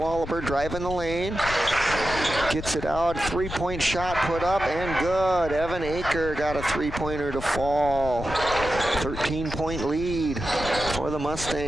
driving the lane. Gets it out. Three-point shot put up and good. Evan Aker got a three-pointer to fall. 13-point lead for the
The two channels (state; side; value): noise; left; rumble, 9 dB below the sound